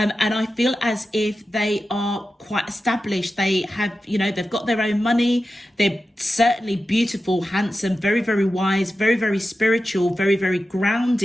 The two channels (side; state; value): both; normal; correlation 0.92